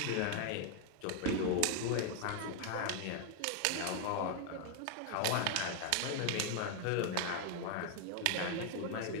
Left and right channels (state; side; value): different; both; correlation 0.00